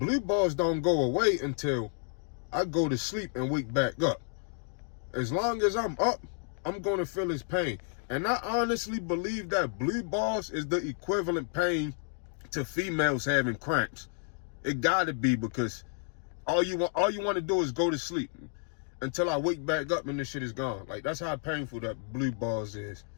balls don't go away until I go to sleep and wake back up. As long as I'm up, I'm going to feel this pain. And I honestly believe that blue balls is the equivalent pain to females having cramps. It gotta be, because all you want to do is go to sleep until I wake back up and this shit is gone. Like, that's how painful that blue balls is.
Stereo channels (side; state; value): right; silent; 57 dB below the other